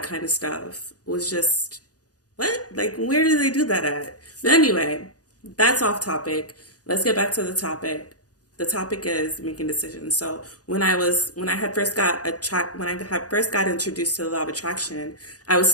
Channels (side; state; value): right; late; 0.68 ms